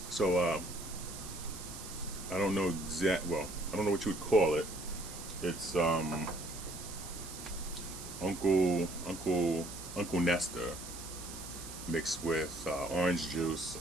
So, I don't know I don't know what you would call it. It's Uncle Nestor mixed with orange juice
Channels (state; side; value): noise; right; hiss, 11 dB below the sound